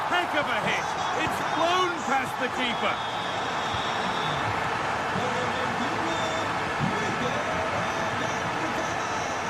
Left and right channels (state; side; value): identical; both; correlation 1.00